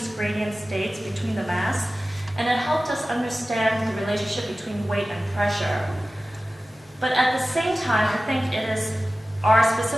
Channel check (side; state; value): both; normal; correlation 0.96